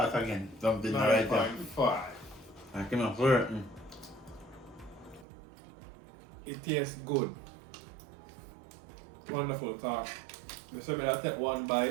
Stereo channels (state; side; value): drops out; left; at 5.2 s